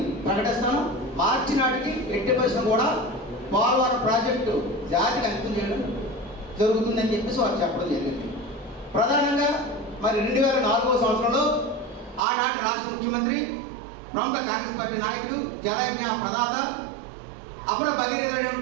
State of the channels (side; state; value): left; drops out; at 12.2 s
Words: ప్రకటిస్తాను, మార్చి నాటికి ఎట్టి పరిశ్రమ కూడా పోలవరం ప్రాజెక్టు జాతికి అంకితం చేయడం జరుగుతుందని చెప్పేసి వారు చెప్పడం జరిగింది. ప్రధానంగా మరి 2004వ సంవత్సరంలో ఆనాటి రాష్ట్ర ముఖ్యమంత్రి, ప్రముఖ కాంగ్రెస్ పార్టీ నాయకుడు, జలయజ్ఞ ప్రదాత, అపర